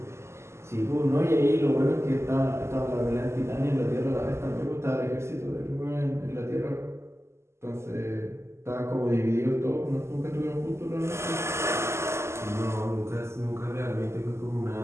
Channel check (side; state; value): left; late; 0.13 ms